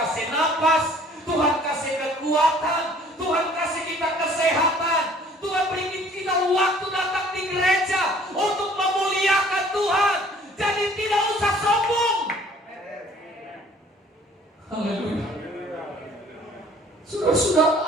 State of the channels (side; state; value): both; normal; correlation 0.55